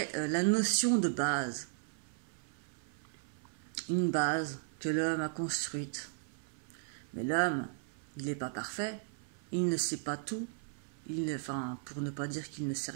la notion de base. Une base que l'homme a construite. Mais l'homme, il n'est pas parfait, il ne sait pas tout, enfin, pour ne pas dire qu'il ne sait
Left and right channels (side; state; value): left; silent; 54 dB below the other